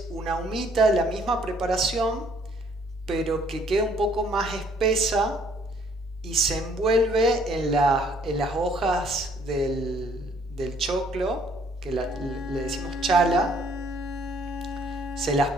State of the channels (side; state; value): both; normal; correlation 0.63